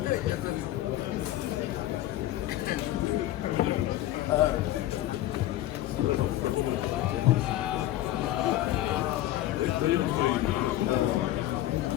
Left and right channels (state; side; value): quieter; right; 14.3 dB